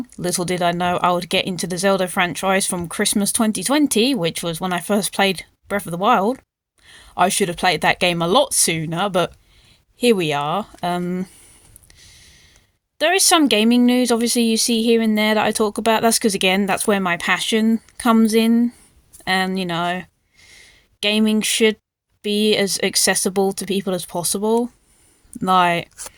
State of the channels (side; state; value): both; identical; correlation 1.00